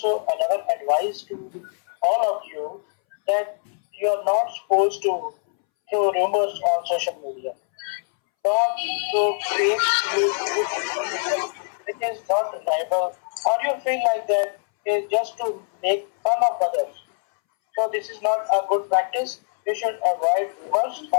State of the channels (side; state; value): right; silent; 63 dB below the other